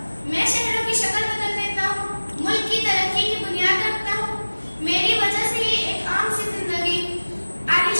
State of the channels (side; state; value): both; inverted; correlation -1.00